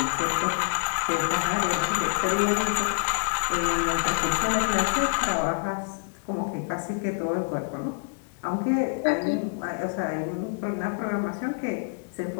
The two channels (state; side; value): silent; right; digital silence